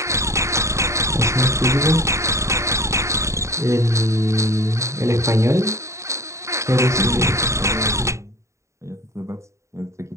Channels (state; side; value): late; left; 0.14 ms